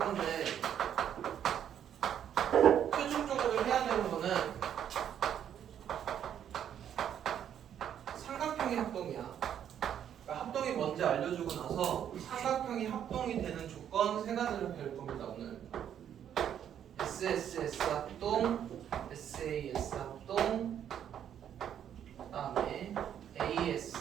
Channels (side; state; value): left; quieter; 9.5 dB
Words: 최종적으로 해야 되는 거는 삼각형의 합동이야. 그러니까 합동이 뭔지 알려주고 나서 삼각형이 합동이 되는 조건 3가지를 배울 겁니다. 오늘 SSS 합동, SAS 합동, 그 다음에